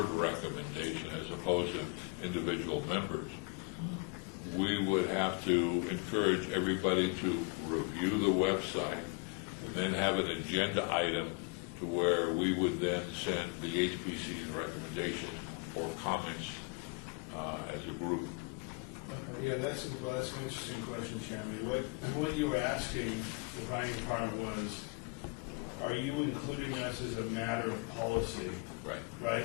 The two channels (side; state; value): right; quieter; 30.9 dB